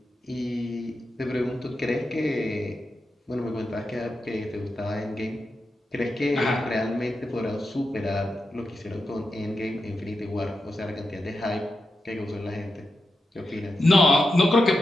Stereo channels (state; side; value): normal; both; correlation 0.88